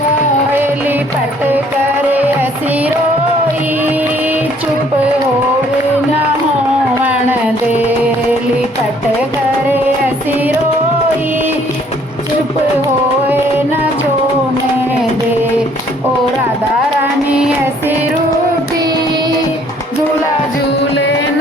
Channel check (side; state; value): both; normal; correlation 0.61